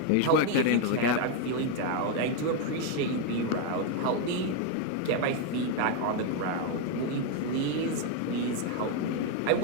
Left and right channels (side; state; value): both; different; correlation 0.01